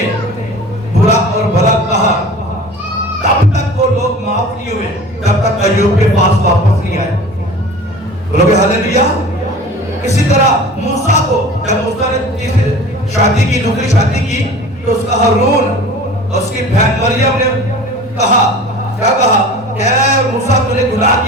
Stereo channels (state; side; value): normal; both; correlation 0.40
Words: برا اور بھلا کہا، تب تک وہ لوگ معاف نہیں ہوئے جب تک ایوب کے پاس واپس نہیں آئے، بولو گے ہاللیلویا۔ اسی طرح موسیٰ کو جب موسیٰ نے شادی کی، دوسری شادی کی، تو اس کا ہارون اور اس کی بہن مریم نے کہا، کیا کہا کہ اے موسیٰ تو نے گناہ